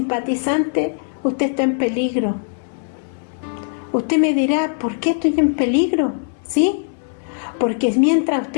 usted está en peligro. Usted me dirá, ¿por qué estoy en peligro? ¿Sí? Porque mientras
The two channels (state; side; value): silent; right; 66 dB below the other